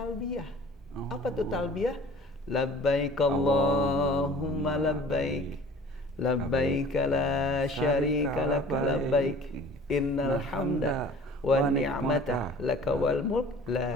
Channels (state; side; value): normal; both; correlation 0.46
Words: Apa tuh talbiyah? Labbaik Allahumma labbaik, labbaik la syarika lak labbaik, innal hamda wa ni'mata laka wal mulk